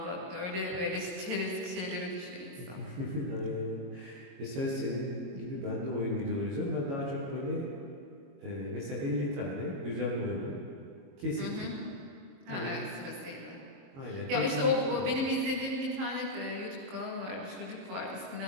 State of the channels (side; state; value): left; late; 22 ms